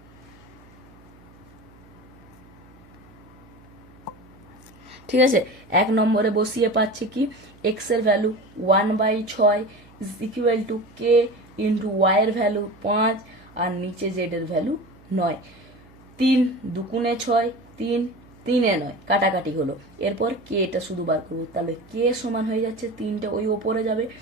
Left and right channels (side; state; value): right; noise; hum, 25 dB below the sound